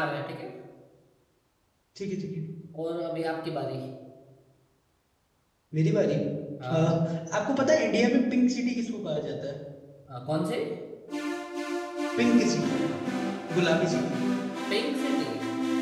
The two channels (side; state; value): both; identical; correlation 1.00